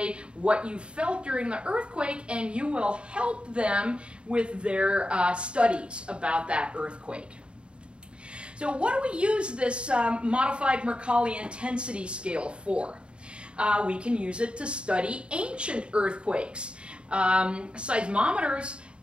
what you felt during the earthquake and you will help them with their studies about that earthquake. So what do we use this modified Mercalli intensity scale for? We can use it to study ancient earthquakes. Seismometers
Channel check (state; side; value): late; left; 0.055 ms